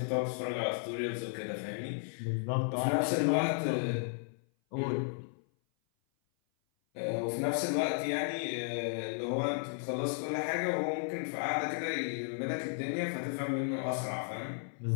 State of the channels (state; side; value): silent; right; 55 dB below the other